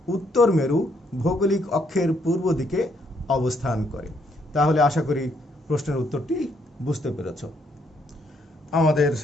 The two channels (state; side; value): normal; both; correlation 0.72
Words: উত্তর মেরু ভৌগোলিক অক্ষের পূর্ব দিকে অবস্থান করে। তাহলে আশা করি প্রশ্নের উত্তরটি বুঝতে পেরেছ। আমাদের